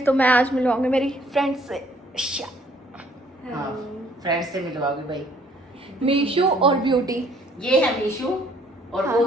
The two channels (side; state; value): both; normal; correlation 0.62